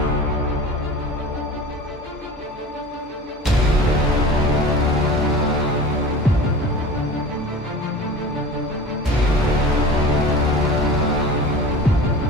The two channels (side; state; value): both; normal; correlation 0.37